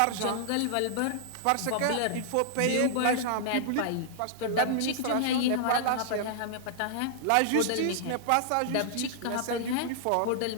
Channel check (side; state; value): both; different; correlation -0.01